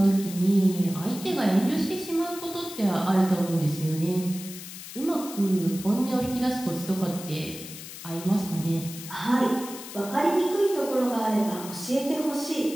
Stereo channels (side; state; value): left; noise; hiss, 12 dB below the sound